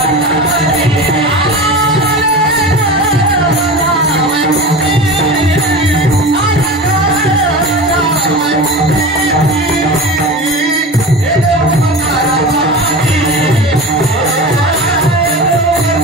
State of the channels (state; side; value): normal; both; correlation 0.30